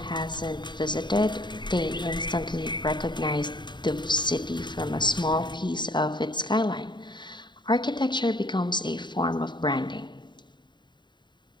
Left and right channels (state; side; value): late; right; 0.22 ms